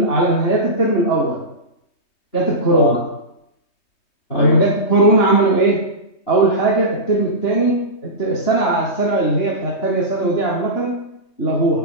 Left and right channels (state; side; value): late; right; 3.2 ms